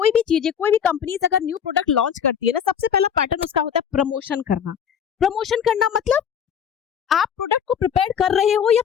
भी चीजें, कोई भी कंपनीज अगर न्यू प्रोडक्ट लॉन्च करती है ना, सबसे पहला पैटर्न उसका होता है प्रमोशन करना। प्रमोशन करना मतलब आप प्रोडक्ट को प्रिपेयर कर रहे हो या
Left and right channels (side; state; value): right; quieter; 8.0 dB